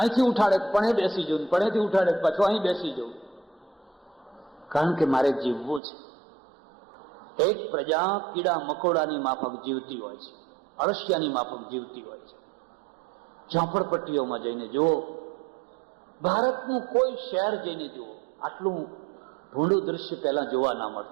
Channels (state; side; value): drops out; left; at 5.8 s